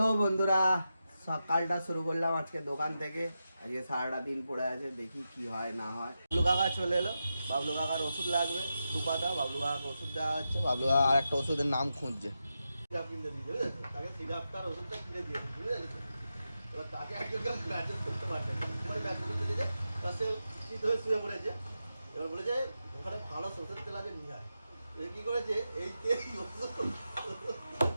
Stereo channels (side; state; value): both; inverted; correlation -0.89